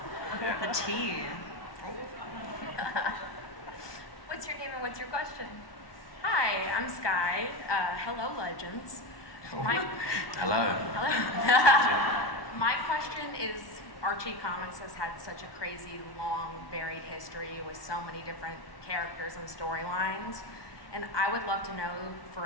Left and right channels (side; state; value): right; late; 1.2 ms